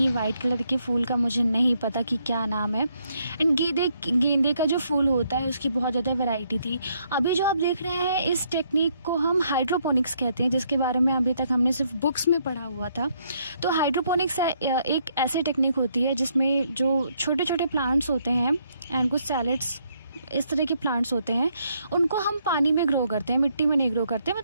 वाइट कलर के फूल का मुझे नहीं पता कि क्या नाम है। एंड गेंदे का जो फूल होता है उसकी बहुत ज़्यादा वैरायटी थी। अभी जो आप देख रहे हैं इस टेक्निक को हम हाइड्रोपोनिक्स कहते हैं, जिसके बारे में अभी तक हमने सिर्फ बुक्स में पढ़ा हुआ था। तो हाइड्रोपोनिक्स एक ऐसी टेक्निक होती है जिसमें जो छोटे छोटे प्लांट्स होते हैं एंड कुछ सैलेड्स इस तरह के प्लांट्स होते हैं, उनको हम पानी में ग्रो करते हैं, मिट्टी में नहीं ग्रो करते।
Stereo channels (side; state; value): both; inverted; correlation -0.72